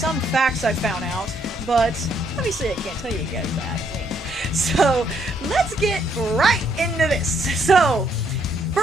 facts I found out, but obviously I can't tell you guys that. Wink. So, let's get right into this. So,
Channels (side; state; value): both; normal; correlation 0.71